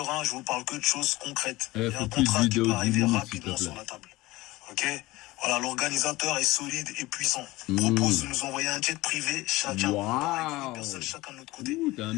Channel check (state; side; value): quieter; right; 19.7 dB